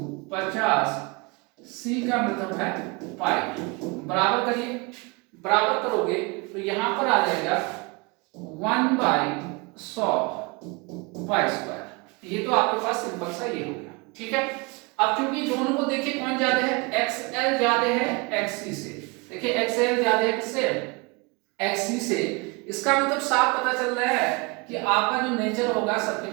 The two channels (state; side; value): quieter; left; 27.7 dB